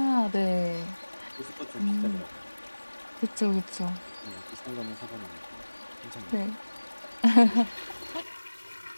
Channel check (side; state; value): both; inverted; correlation -1.00